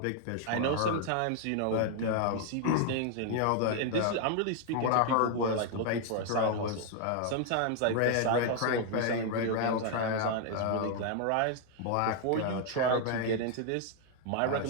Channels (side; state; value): both; different; correlation 0.00